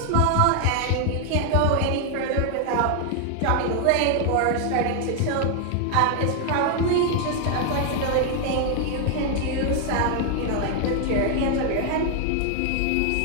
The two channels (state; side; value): different; both; correlation 0.00